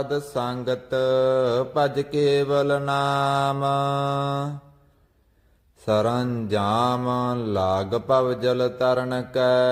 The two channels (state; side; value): identical; both; correlation 1.00